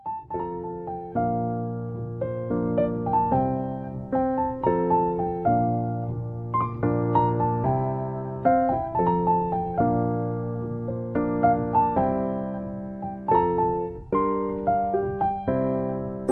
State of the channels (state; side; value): identical; both; correlation 1.00